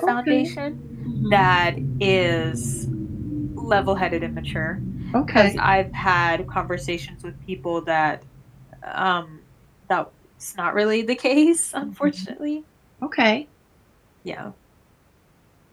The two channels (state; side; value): identical; both; correlation 1.00